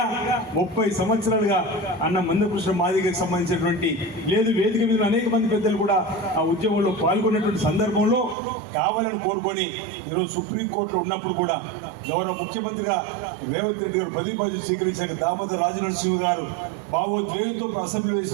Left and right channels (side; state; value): left; drops out; at 8.3 s